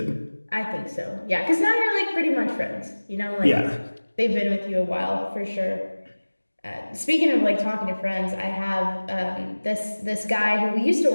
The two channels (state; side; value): inverted; both; correlation -1.00